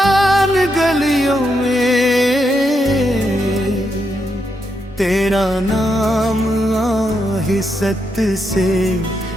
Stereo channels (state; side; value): normal; both; correlation 0.81